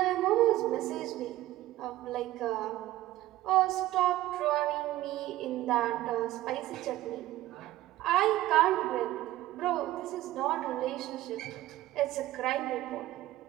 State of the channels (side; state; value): left; quieter; 15.6 dB